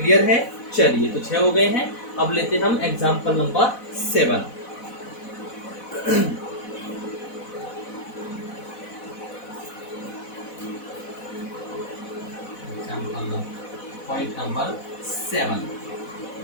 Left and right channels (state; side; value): late; right; 4.1 ms